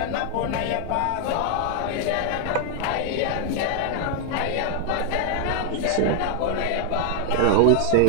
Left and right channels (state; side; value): different; both; correlation 0.00